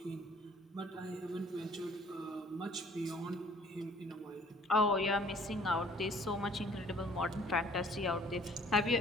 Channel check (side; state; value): both; normal; correlation 0.55